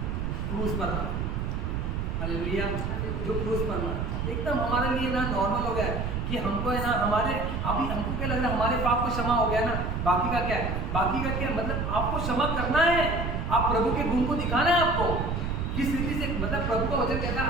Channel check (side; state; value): right; noise; rumble, 2 dB below the sound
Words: क्रूस पर था। हालेलुया। जो क्रूस पर था एकदम हमारे लिए ना नॉर्मल हो गया है कि हमको है ना हमारे अभी हमको क्या लग रहा है हमारे पाप को क्षमा हो गया ना, बाकी का क्या है? बाकी का क्या मतलब आपको क्षमा करना है। आप प्रभु के गुण को दिखाना है आपको किस रीति से। मतलब प्रभु का वचन कहता है